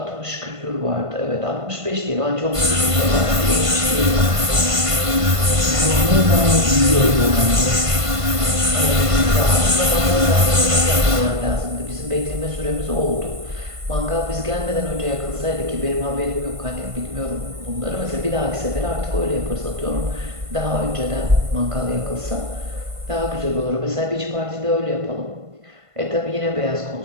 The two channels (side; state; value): left; late; 1.5 ms